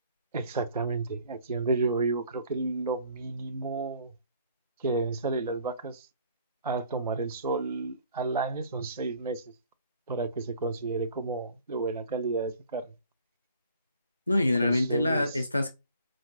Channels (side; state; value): both; inverted; correlation -0.56